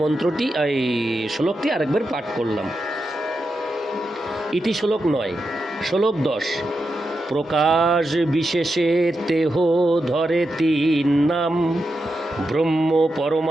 মন্ত্রটি এই শ্লোকটি আরেকবার পাঠ করলাম। ইতি শ্লোক 9। শ্লোক 10। প্রকাশ বিশেষে তেহ ধরে 3 নাম, ব্রহ্ম,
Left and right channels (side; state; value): both; normal; correlation 0.87